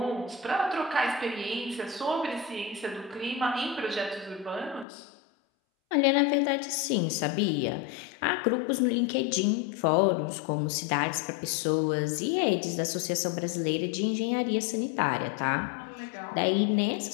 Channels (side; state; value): right; drops out; at 4.9 s